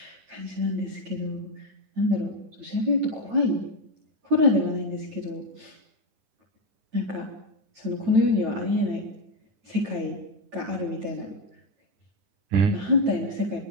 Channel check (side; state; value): left; late; 9.0 ms